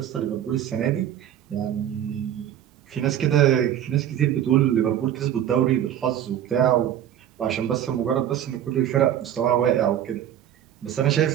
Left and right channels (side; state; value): left; quieter; 10.8 dB